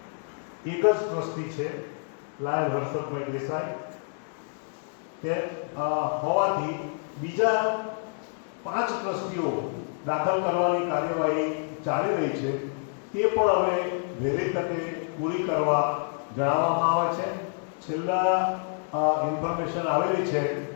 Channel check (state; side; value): silent; right; 60 dB below the other